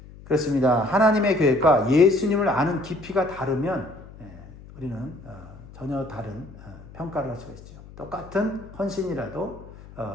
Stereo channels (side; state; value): left; noise; hum, 18 dB below the sound